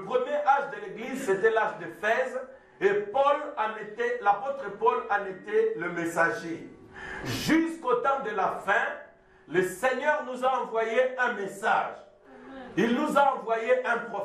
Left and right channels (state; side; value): identical; both; correlation 1.00